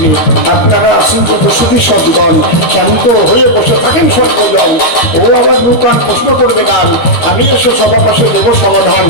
আপনারা আসেন যত সুখী সদ্গণ, শান্ত হয়ে বসে থাকেন সর্বজন। ও আবার নূতন প্রশ্ন করবে গান, আমি এসে সবার পাশে দেব সমাধান।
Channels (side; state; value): right; late; 13 ms